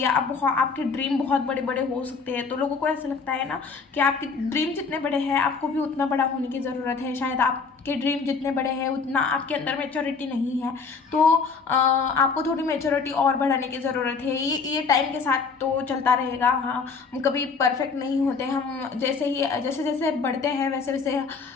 आपके ड्रीम बहुत बड़े बड़े हो सकते हैं, तो लोगों को ऐसा लगता है ना कि आपके ड्रीम जितने बड़े हैं आपको भी उतना बड़ा होने की ज़रूरत है, शायद आपके ड्रीम जितने बड़े हैं उतना आपके अंदर मैच्योरिटी नहीं है, तो आपको थोड़ी मैच्योरिटी और बढ़ाने की ज़रूरत है। ये टाइम के साथ तो चलता रहेगा, हाँ, हम कभी परफेक्ट नहीं होते, हम जैसे जैसे बढ़ते हैं वैसे वैसे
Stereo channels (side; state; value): right; quieter; 5.0 dB